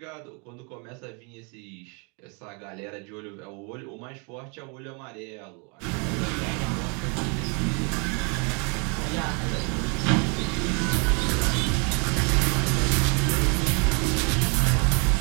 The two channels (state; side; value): quieter; left; 34.7 dB